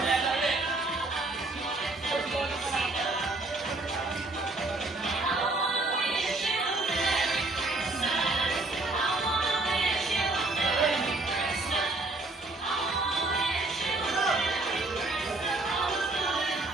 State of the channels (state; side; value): quieter; left; 3.1 dB